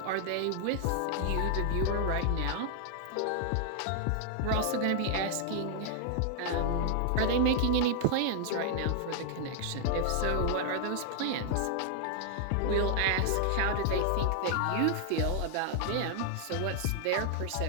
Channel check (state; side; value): different; both; correlation -0.01